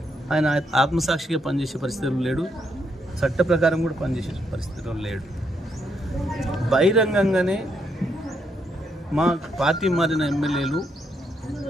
ఆయన ఆత్మసాక్షిగా పనిచేసే పరిస్థితులు లేడు, చట్ట ప్రకారం కూడా పనిచేసే పరిస్థితుల్లో లేడు. బహిరంగంగానే మా పార్టీ మారిన ఎమ్మెల్యేలు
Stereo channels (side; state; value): both; normal; correlation 0.77